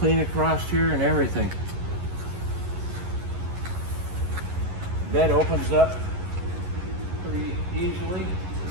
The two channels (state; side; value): late; left; 11 ms